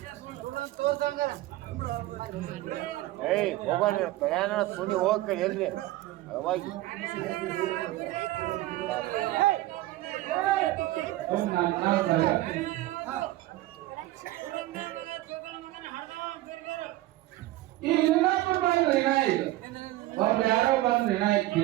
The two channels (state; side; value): quieter; left; 16.7 dB